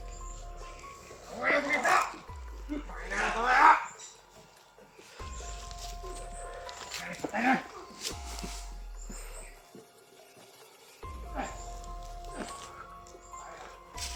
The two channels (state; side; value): identical; both; correlation 1.00